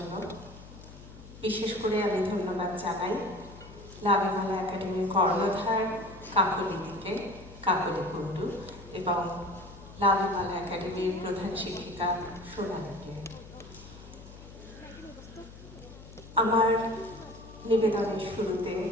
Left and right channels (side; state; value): left; noise; hum, 17 dB below the sound